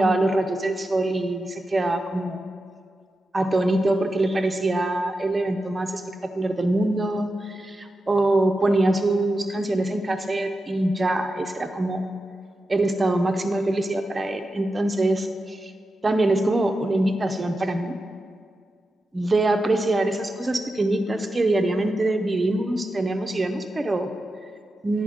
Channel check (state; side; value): normal; both; correlation 0.90